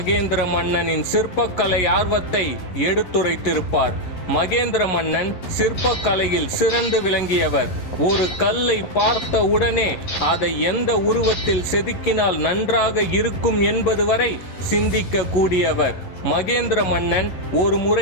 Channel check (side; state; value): right; late; 11 ms